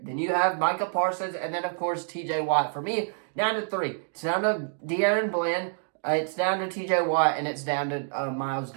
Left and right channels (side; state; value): left; silent; digital silence